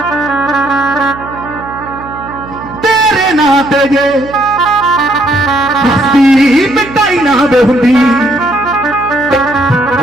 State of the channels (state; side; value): noise; right; hum, 15 dB below the sound